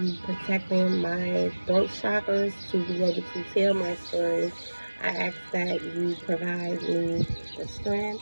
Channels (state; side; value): inverted; both; correlation -1.00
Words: protecting my throat chakras to be able to tell my story. I ask that you provide me the strength,